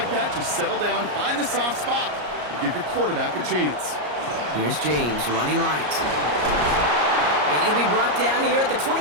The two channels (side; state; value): left; late; 34 ms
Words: that, just settle down, find the soft spot, and give your quarterback a chance. Here's James running right. And he'll be brought down here at the